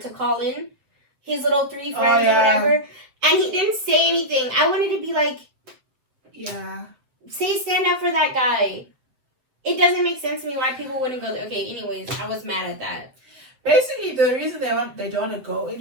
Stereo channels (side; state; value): left; late; 8.0 ms